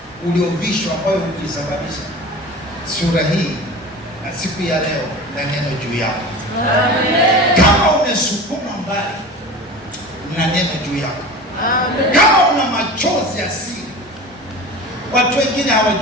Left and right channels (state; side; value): normal; both; correlation 0.34